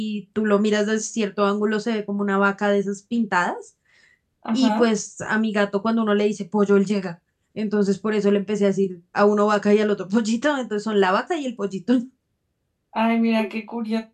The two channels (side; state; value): both; identical; correlation 1.00